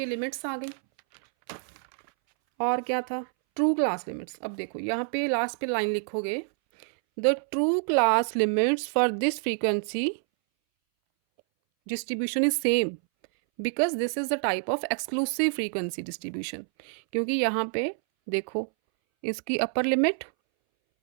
लिमिट्स आ गई। और क्या था? True class limits. अब देखो यहाँ पे लास्ट पे लाइन लिखोगे, the true class limits for this frequency distribution is same because this is the type of exclusive frequency distribution. क्योंकि यहाँ पे देखो, इसकी अपर लिमिट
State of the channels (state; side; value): silent; left; 60 dB below the other